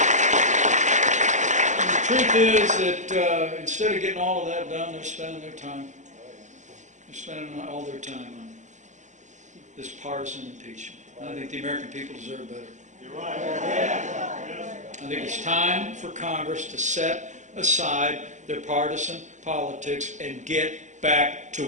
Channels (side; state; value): left; late; 0.35 ms